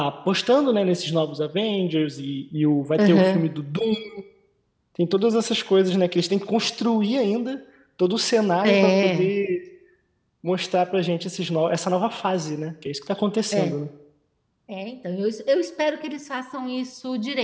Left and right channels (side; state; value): both; identical; correlation 1.00